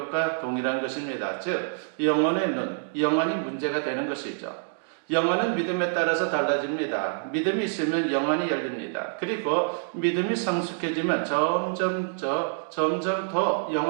동일한 것입니다. 즉 영혼의 눈, 영혼이 문제가 되는 것이죠. 영혼은 믿음에 따라서 달라집니다. 믿음이 있으면 영혼이 열립니다. 그리고 믿음이 성숙해지면 점점 더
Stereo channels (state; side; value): silent; left; digital silence